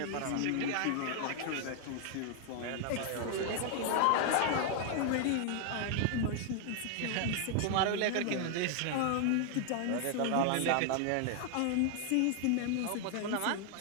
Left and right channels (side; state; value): both; different; correlation 0.00